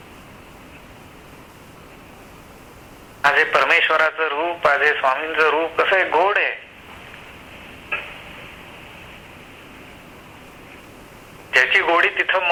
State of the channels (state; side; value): identical; both; correlation 1.00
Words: माझे परमेश्वराचं रूप, माझे स्वामींचं रूप कसं आहे, गोड आहे. ज्याची गोडी तिथं